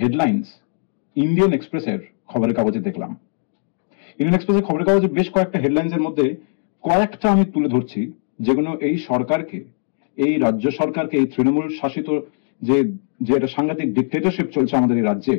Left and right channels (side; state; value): right; silent; digital silence